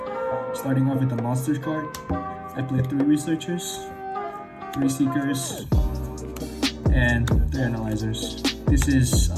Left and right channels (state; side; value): identical; both; correlation 1.00